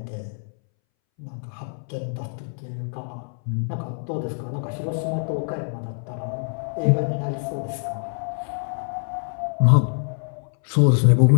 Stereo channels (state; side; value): silent; right; 62 dB below the other